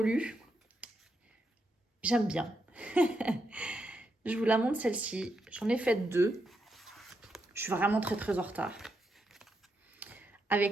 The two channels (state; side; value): normal; both; correlation 0.82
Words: J'aime bien. Je vous la montre celle-ci. J'en ai fait deux. Je suis vraiment très en retard.